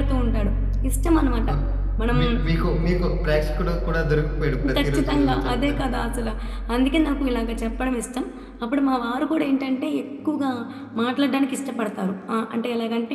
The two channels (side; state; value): both; identical; correlation 1.00